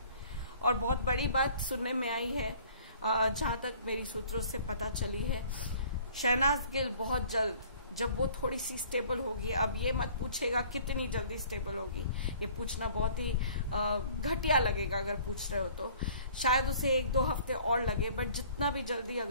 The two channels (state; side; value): inverted; both; correlation -0.53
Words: और बहुत बड़ी बात सुनने में आई है, जहां तक मेरी सूत्रों से पता चली है, शहनाज गिल बहुत जल्द जब वो थोड़ी सी स्टेबल होगी, अब ये मत पूछेगा कितनी जल्दी स्टेबल होगी, ये पूछना बहुत ही घटिया लगेगा अगर पूछ रहे हो तो, शायद उसे 1-2 हफ्ते और लगे, बट जितना भी जल्दी